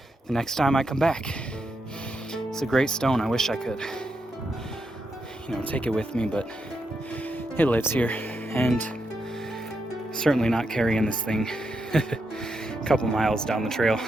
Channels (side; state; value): both; normal; correlation 0.83